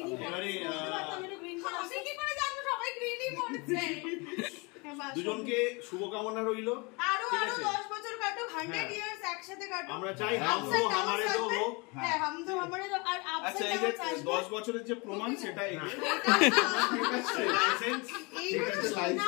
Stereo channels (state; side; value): quieter; right; 28.7 dB